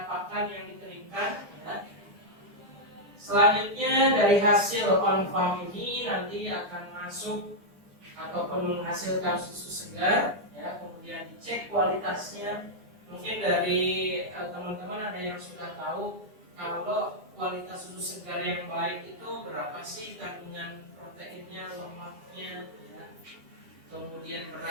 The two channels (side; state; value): left; late; 10 ms